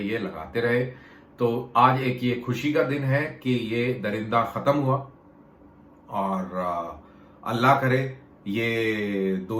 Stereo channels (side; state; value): both; identical; correlation 1.00